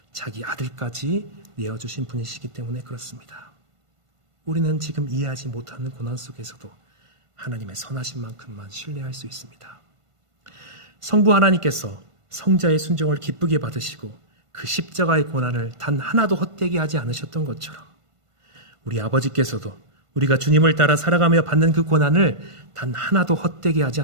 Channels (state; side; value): late; left; 1.5 ms